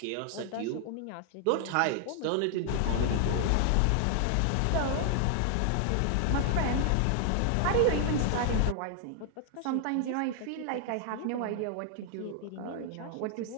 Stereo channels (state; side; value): different; both; correlation 0.00